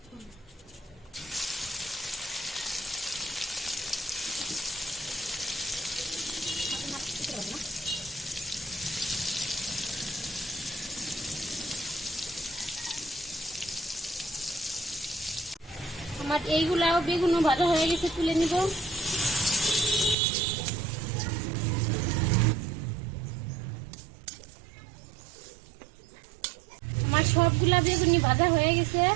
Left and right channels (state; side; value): drops out; left; at 20.2 s